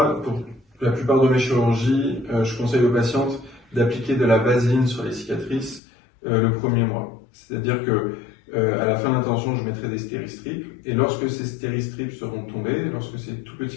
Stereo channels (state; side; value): drops out; right; at 5.8 s